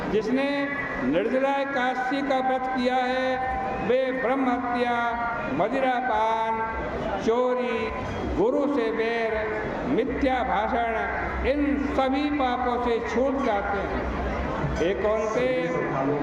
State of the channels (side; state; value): both; identical; correlation 1.00